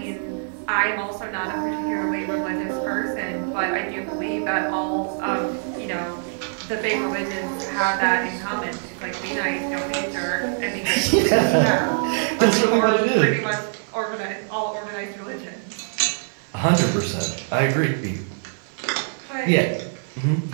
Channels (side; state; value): left; silent; digital silence